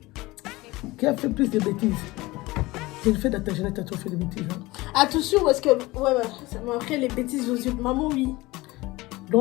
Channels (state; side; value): quieter; right; 20.7 dB